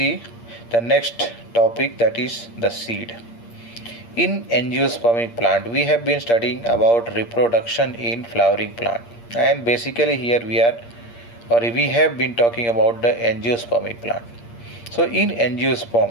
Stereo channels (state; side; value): late; right; 8.6 ms